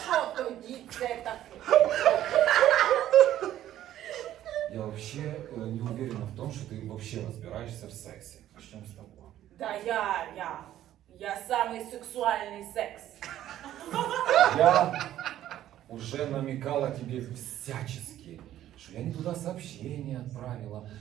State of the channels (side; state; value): left; quieter; 12.5 dB